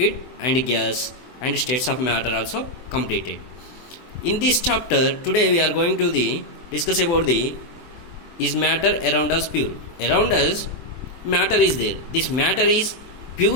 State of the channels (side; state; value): right; late; 24 ms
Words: and gas, and states of matter also completed. In this chapter today we are going to discuss about the is matter around us pure? Around us matter is there. This matter is